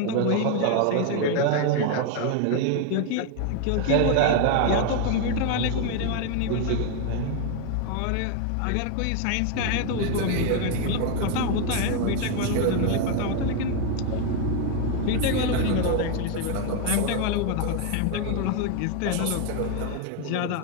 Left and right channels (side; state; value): both; different; correlation 0.01